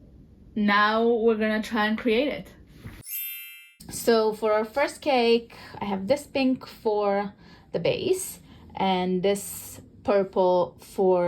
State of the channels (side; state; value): both; identical; correlation 1.00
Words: now we're gonna try and create it. So for our first cake, I have this pink for the base and this purple